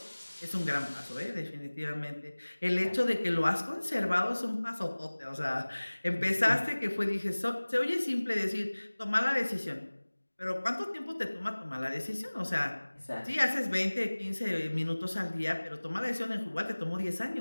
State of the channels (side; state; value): both; inverted; correlation -1.00